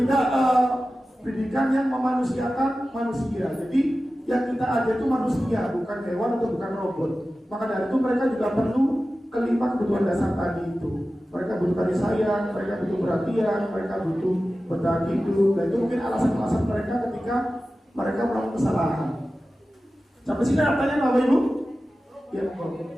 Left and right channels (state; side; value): normal; both; correlation 0.95